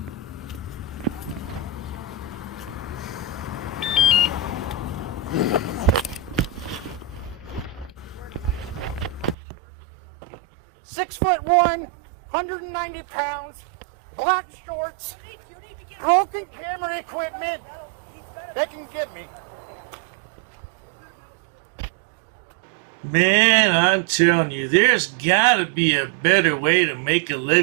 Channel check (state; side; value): drops out; left; at 9.3 s